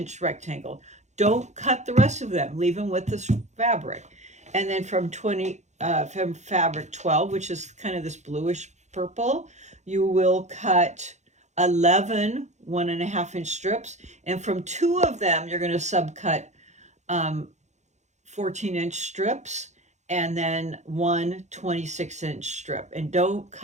rectangle. Don't cut the rest of them. Leave them with this fabric. And then from fabric 12, which is kind of this bluish purple, you will cut 11 1.5 inch strips. And from 2 of them, you're going to subcut 14 inch strips, and then one 26 inch strip. And don't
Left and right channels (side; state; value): left; late; 0.34 ms